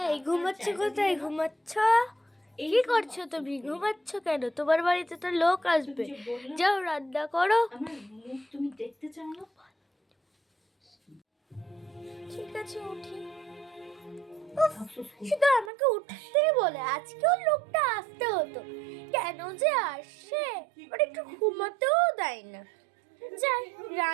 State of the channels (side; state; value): left; drops out; at 15.7 s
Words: এই ঘুমাচ্ছ কোথায়? ঘুমাচ্ছ? কি করছো তুমি? ঘুমাচ্ছ কেন? তোমার বাড়িতে তো লোক আসবে, যাও রান্না করো। তুমি দেখতে চাও না? ঠিক আছে উঠি। শুধু আমাকে উঠতেই বলে, আজকেও লোকটা আসতে হতো, কেন যে আসে? ওর একটু ঘুমাতেও দেয় না। যাই